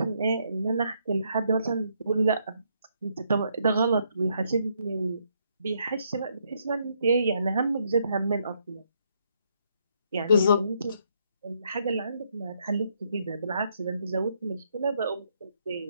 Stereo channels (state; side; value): inverted; both; correlation -0.74